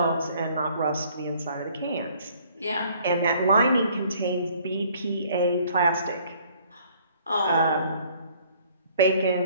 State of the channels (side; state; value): both; inverted; correlation -0.58